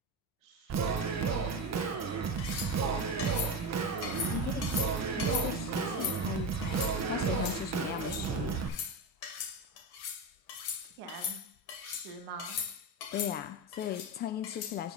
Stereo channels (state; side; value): normal; both; correlation 0.18